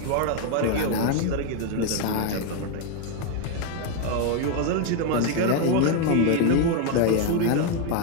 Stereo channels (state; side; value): different; both; correlation 0.01